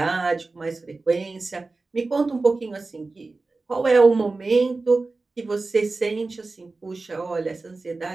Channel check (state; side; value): quieter; left; 3.6 dB